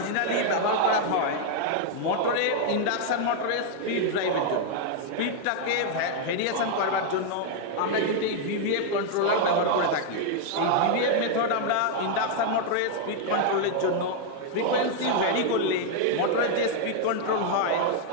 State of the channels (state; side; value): different; both; correlation 0.00